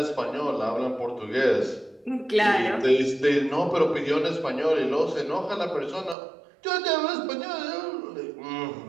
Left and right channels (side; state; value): left; drops out; at 6.2 s